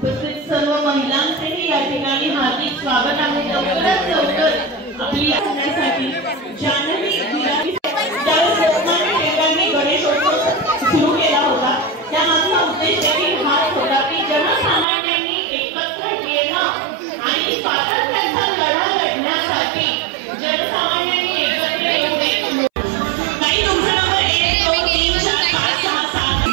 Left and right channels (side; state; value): left; drops out; at 14.9 s